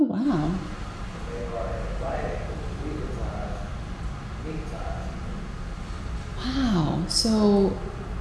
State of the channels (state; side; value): identical; both; correlation 1.00